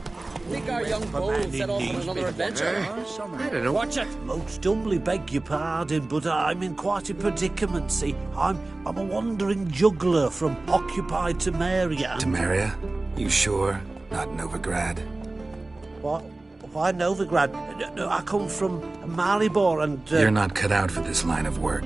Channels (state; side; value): quieter; left; 3.0 dB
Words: Think our young bull set off on another adventure? I don't know. Watch it! Most humbly beg your pardon, but I'm in quite a predicament. See, I'm a wandering juggler from occupied Temeria. Temeria? You sure? Not Novigrad? What? Why Novigrad? No, I come from Maribor and... You're not cut out for this line of